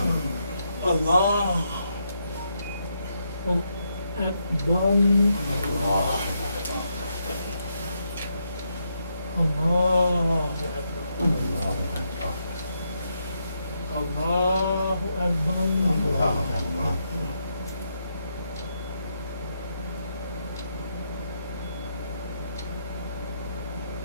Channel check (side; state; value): both; inverted; correlation -0.80